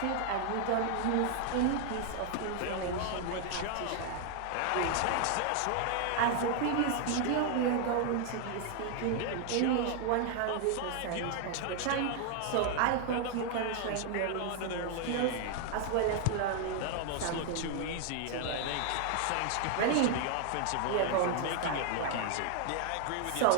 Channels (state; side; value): different; both; correlation 0.00